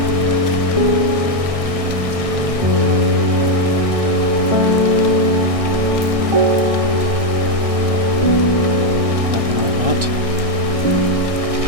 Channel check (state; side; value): late; left; 1.6 ms